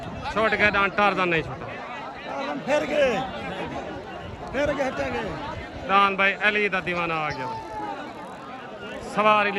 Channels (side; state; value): both; identical; correlation 1.00